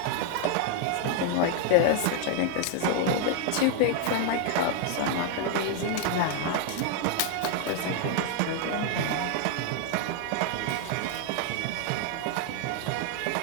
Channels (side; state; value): both; different; correlation 0.00